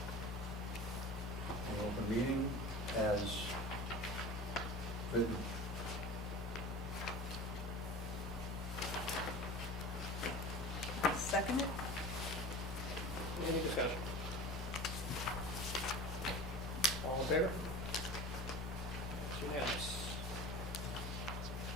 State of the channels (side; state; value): both; normal; correlation 0.36